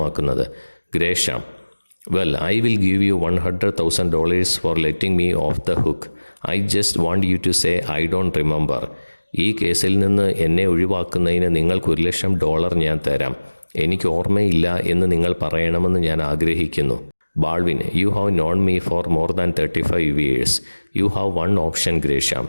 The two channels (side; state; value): both; inverted; correlation -1.00